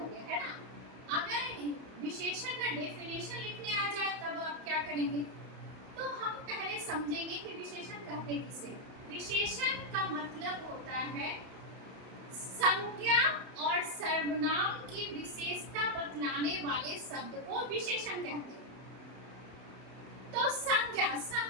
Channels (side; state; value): left; late; 31 ms